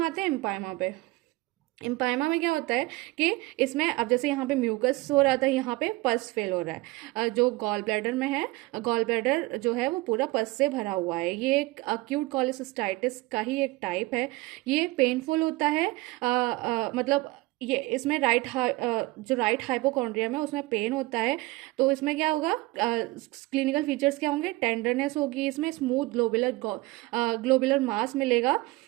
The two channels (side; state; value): left; quieter; 21.4 dB